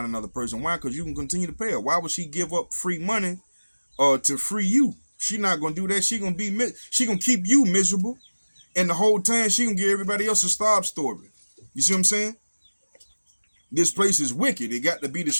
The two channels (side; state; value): both; inverted; correlation -1.00